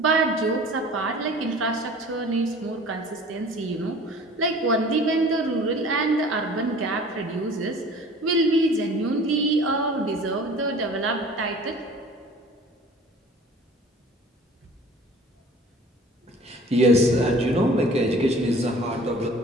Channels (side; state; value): both; normal; correlation 0.46